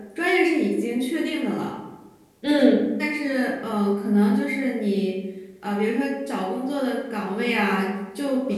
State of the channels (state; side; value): identical; both; correlation 1.00